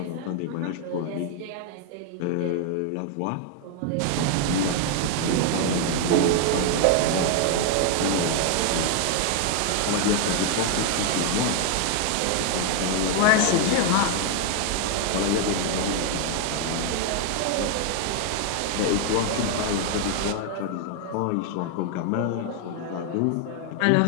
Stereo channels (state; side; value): different; both; correlation 0.00